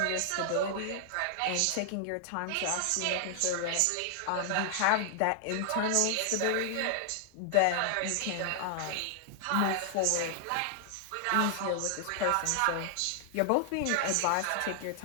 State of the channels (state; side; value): different; both; correlation 0.00